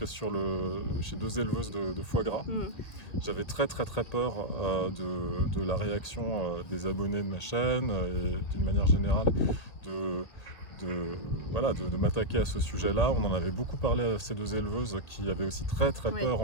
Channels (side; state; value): right; late; 1.9 ms